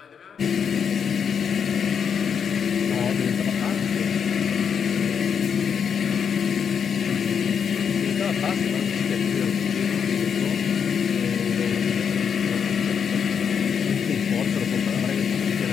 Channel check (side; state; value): right; quieter; 7.1 dB